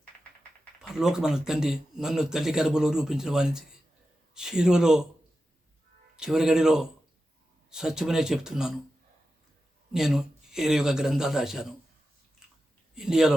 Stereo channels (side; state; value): both; normal; correlation 0.92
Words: పరలోకమైన తండ్రి నన్ను తల్లి గర్భంలో రూపించిన వారికి శిలువలో చివరి గడిలో సత్యమనే చెప్తున్నాను. నేను 21 గ్రంథాలు రాశాను.